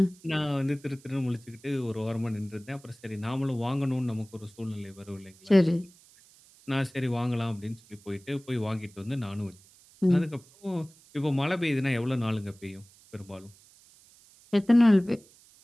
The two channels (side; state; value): right; noise; hiss, 26 dB below the sound